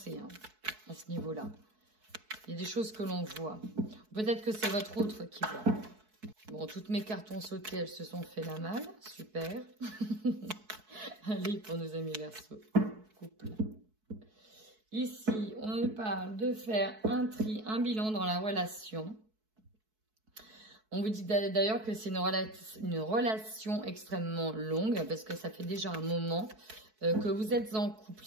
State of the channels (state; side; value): late; left; 4.6 ms